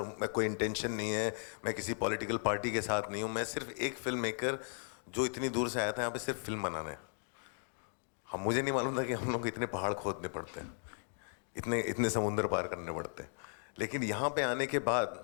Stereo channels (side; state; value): right; silent; 53 dB below the other